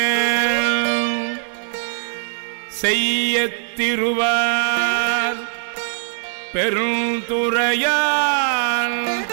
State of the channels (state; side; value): silent; left; digital silence